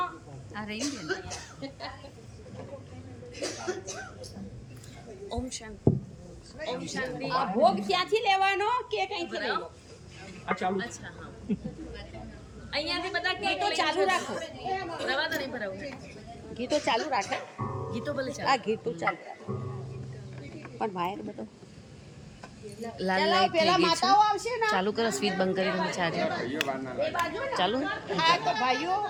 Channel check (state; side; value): identical; both; correlation 1.00